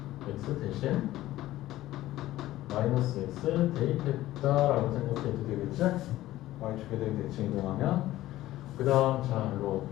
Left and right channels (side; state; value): right; quieter; 15.4 dB